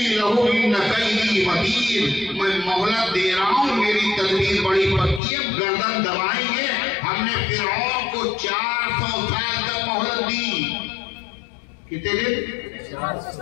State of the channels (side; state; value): right; drops out; at 5.2 s